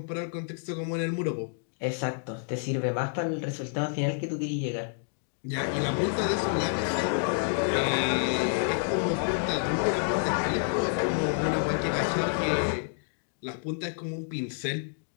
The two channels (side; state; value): right; silent; digital silence